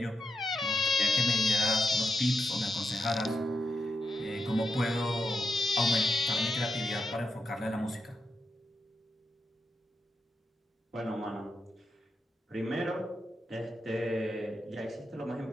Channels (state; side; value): normal; both; correlation 0.85